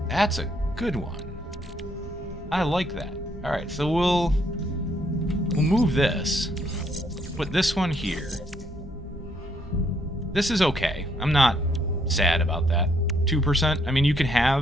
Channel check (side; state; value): both; normal; correlation 0.71